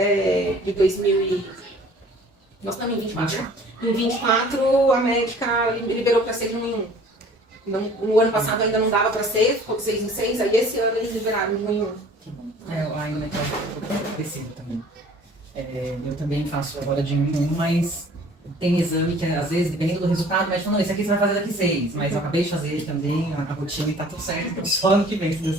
de 2000 e... Nós estamos em 24. Em 24 a médica liberou para ser de 1 em 1. No ano passado ainda não dava para ser, ficou de 6 em 6, aí esse ano eles liberaram de 1 em 1. Que bom. Ainda é crescido também. Eu também faço agora de 1 em 1, mas tem exame que às vezes, dependendo do resultado, o médico fala, não, esse aqui você vai fazer daqui 6. Mas eu acabei de fazer também, a rotina e tá tudo certo, então só ano que vem, se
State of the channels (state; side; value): normal; both; correlation 0.51